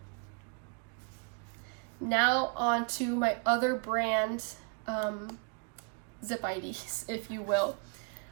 Now on to my other brand Zip IDs, if you will.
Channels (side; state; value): left; quieter; 35.2 dB